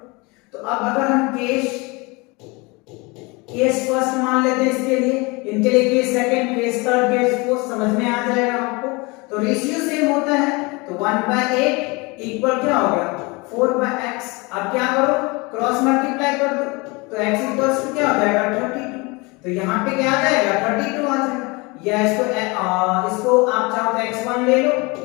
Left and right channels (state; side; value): quieter; right; 26.5 dB